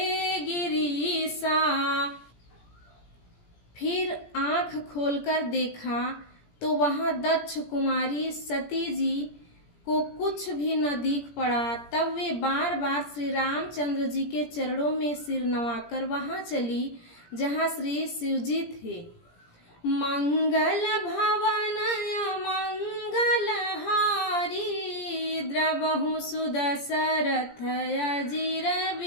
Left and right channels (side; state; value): right; late; 17 ms